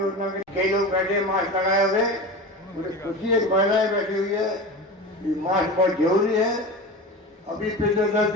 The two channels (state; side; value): normal; both; correlation 0.29